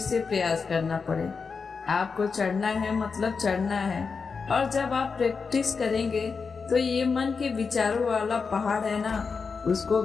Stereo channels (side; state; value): right; quieter; 5.1 dB